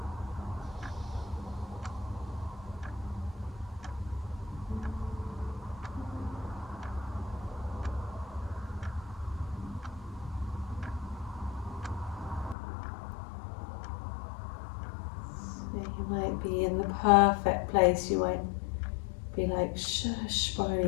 You might be in the perfect place. You might be like, shush, Barney,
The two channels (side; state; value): right; drops out; at 12.6 s